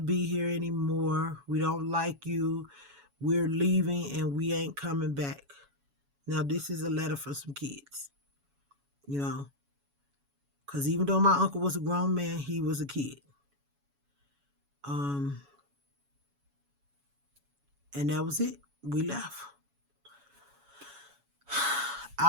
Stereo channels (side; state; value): left; late; 7.1 ms